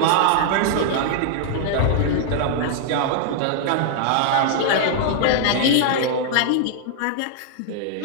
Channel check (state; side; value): different; both; correlation -0.01